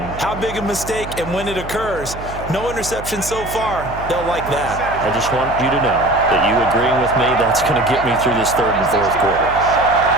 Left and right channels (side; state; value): right; noise; hum, 12 dB below the sound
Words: How big a mistake and when it occurs. No interception so far. They'll like that. I just want you to know that you agreeing with me, that's going to get me through this 3rd and 4th quarter.